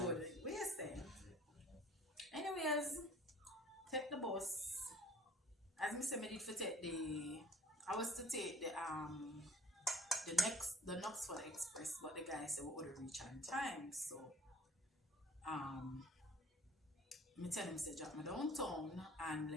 Where's that? Anyways, take the bus. As me say, me did for take the. I was to take the Knoxville Express, but the guy said we would reach on time. So um me tell him say drop me downtown and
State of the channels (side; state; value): both; normal; correlation 0.50